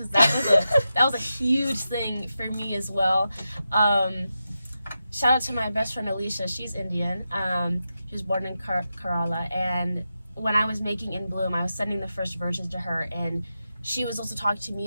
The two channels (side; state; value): both; inverted; correlation -0.89